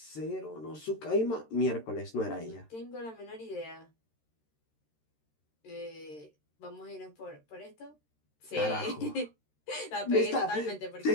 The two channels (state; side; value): late; right; 13 ms